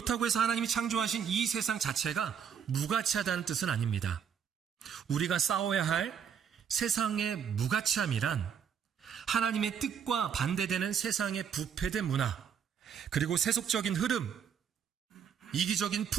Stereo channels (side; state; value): left; quieter; 7.7 dB